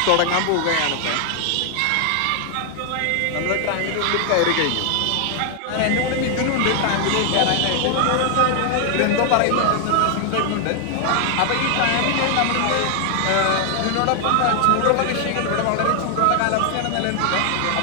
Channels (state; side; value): different; both; correlation 0.00